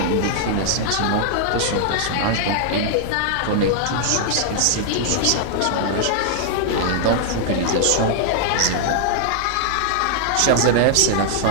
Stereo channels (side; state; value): both; different; correlation -0.01